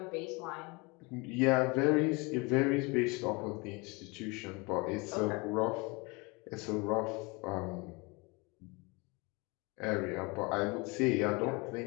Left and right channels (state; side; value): quieter; right; 27.3 dB